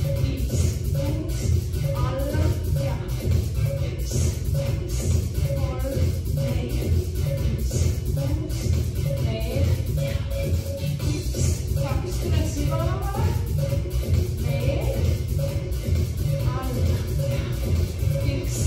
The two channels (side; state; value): both; identical; correlation 1.00